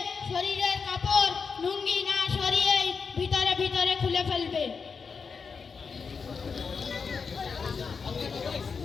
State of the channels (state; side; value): quieter; right; 5.5 dB